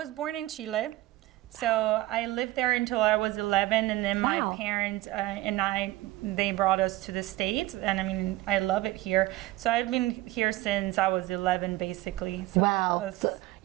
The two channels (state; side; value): quieter; left; 17.4 dB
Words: born in Chile. So I lived there until I was 11, and then Wow. my parents they brought us to the States, and I mean, I love it here. So I've been here since I was 11, basically. So Wow. So